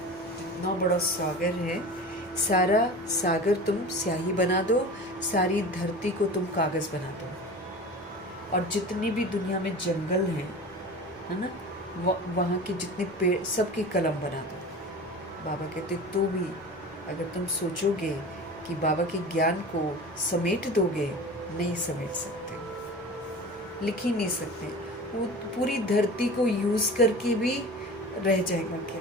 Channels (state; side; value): normal; both; correlation 0.35